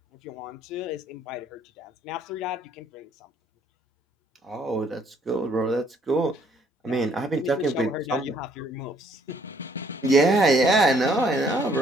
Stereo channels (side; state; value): both; normal; correlation 0.64